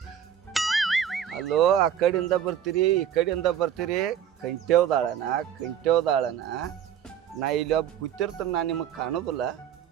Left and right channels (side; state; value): left; quieter; 9.3 dB